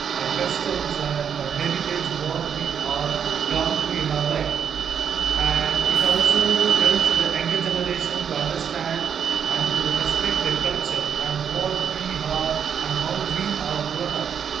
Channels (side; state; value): left; quieter; 7.7 dB